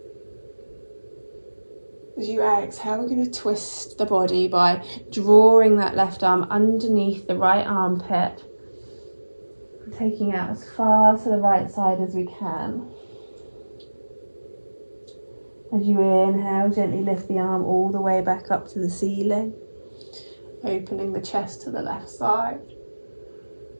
As you exhale, we're going to twist the body by drawing that left arm underneath the right armpit, taking it out as far to the right side as we can. As you inhale, gently lift the arm all the way back up to the ceiling, opening the chest to the left side.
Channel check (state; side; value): inverted; both; correlation -1.00